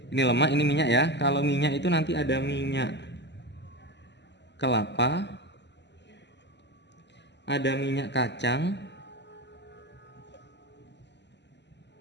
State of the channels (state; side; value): late; right; 0.51 ms